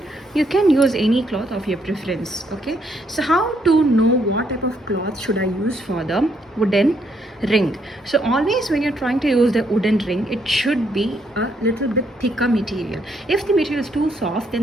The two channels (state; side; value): normal; both; correlation 0.73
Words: You can use any cloth of your preference. Okay, so how to know what type of cloth should I use for the wooden ring? So always when you're trying to use the wooden ring, it should be a little bit thicker material. If the material is too soft,